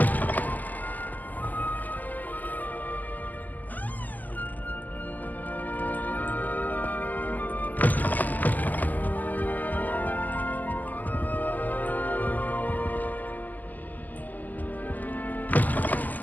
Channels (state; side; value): late; right; 0.083 ms